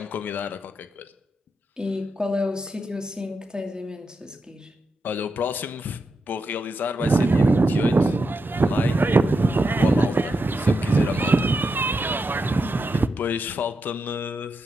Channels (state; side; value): normal; both; correlation 0.85